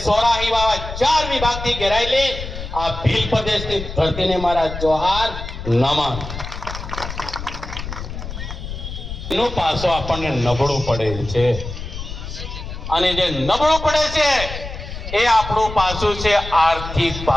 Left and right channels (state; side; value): noise; left; rumble, 8 dB below the sound